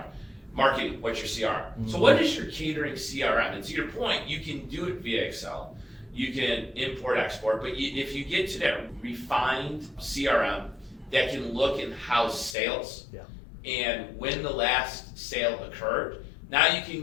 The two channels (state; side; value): drops out; right; at 12.6 s